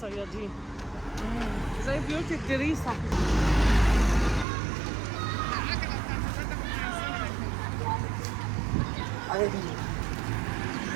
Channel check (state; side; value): drops out; left; at 4.5 s